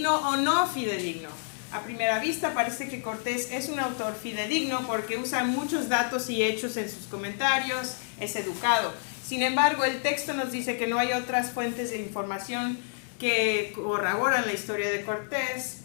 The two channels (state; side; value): silent; right; digital silence